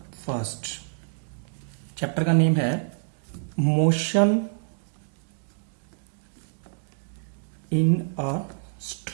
first. Chapter का नेम है motion in a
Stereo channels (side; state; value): left; silent; digital silence